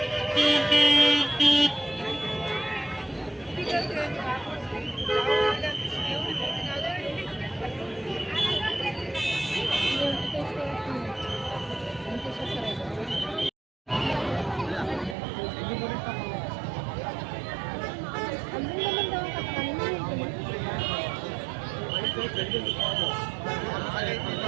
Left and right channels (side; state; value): left; drops out; at 15.2 s